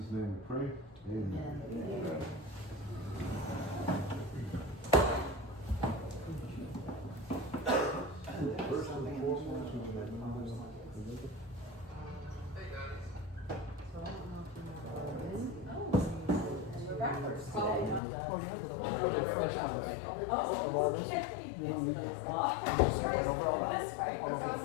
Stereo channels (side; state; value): right; drops out; at 18.0 s